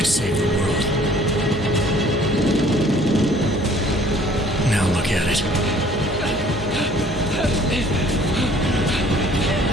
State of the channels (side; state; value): both; normal; correlation 0.56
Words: save the world. Now look at it.